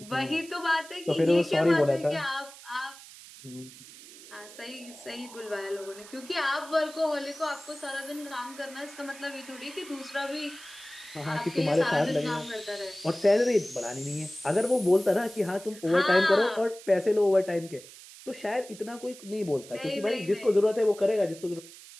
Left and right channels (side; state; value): right; noise; hiss, 18 dB below the sound